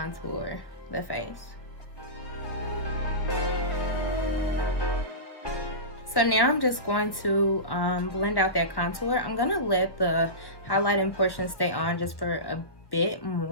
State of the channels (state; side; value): late; right; 1.1 ms